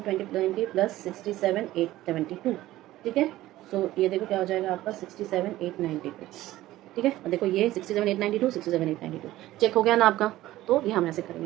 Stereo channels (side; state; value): left; quieter; 15.7 dB